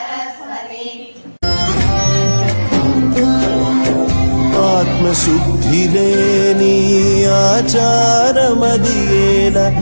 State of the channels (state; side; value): inverted; both; correlation -1.00